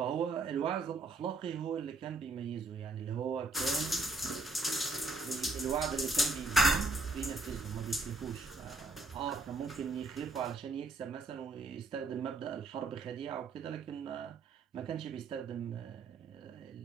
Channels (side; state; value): left; quieter; 3.5 dB